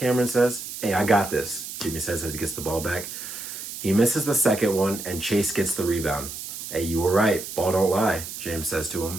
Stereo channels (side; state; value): right; noise; hiss, 9 dB below the sound